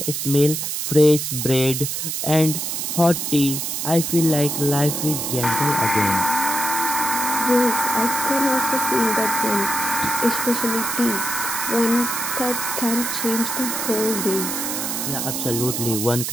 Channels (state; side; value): noise; right; hiss, 2 dB below the sound